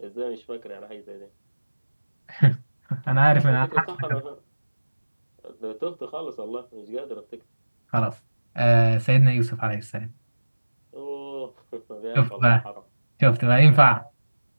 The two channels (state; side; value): inverted; both; correlation -1.00